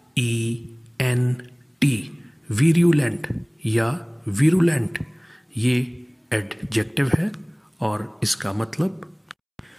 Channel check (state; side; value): identical; both; correlation 1.00